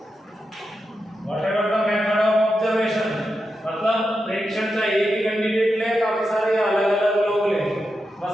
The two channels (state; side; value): normal; both; correlation 0.88